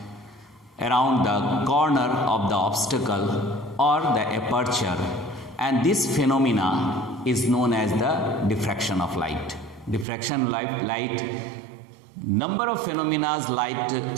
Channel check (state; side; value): drops out; left; at 10.1 s